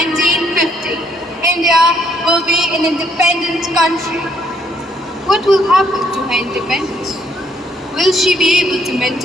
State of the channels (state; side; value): normal; both; correlation 0.68